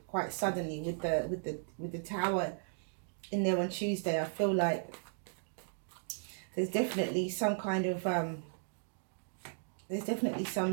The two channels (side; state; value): left; silent; digital silence